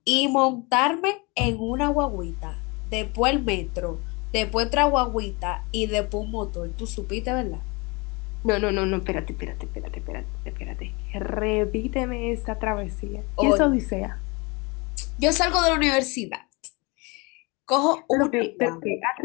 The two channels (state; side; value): quieter; right; 27.7 dB